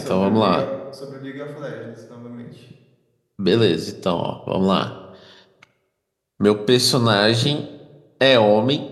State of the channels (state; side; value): identical; both; correlation 1.00